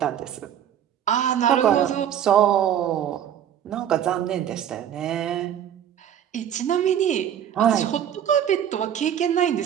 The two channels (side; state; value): left; quieter; 9.9 dB